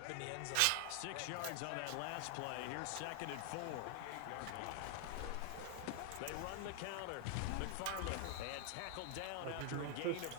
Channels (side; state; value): both; different; correlation 0.00